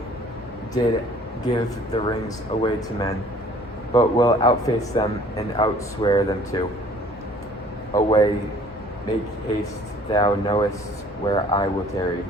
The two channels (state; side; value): normal; both; correlation 0.54